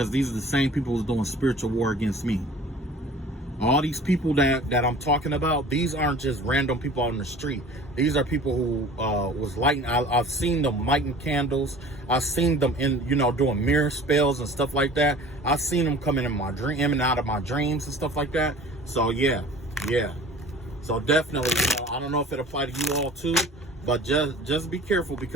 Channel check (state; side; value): normal; both; correlation 0.45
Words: these are the same people who's doing spiritual war against me. All these people that I'm talking about, these aren't just random people on the street. These are people who was lighting. I've seen them lighting candles. I've seen them doing mirror spells and stuff like that. I've seen them coming in and out of my dreams and stuff like that. So yeah. So definitely, I don't know if it applies to you all too, but just be careful,